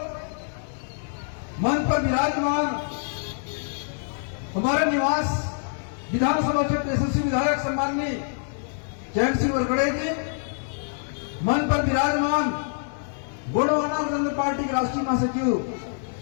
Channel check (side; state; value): right; silent; digital silence